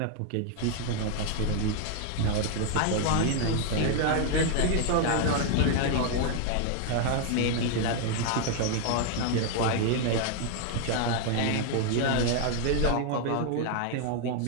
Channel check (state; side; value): different; both; correlation 0.00